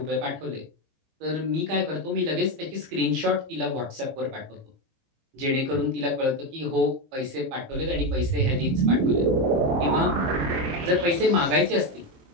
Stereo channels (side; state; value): left; late; 22 ms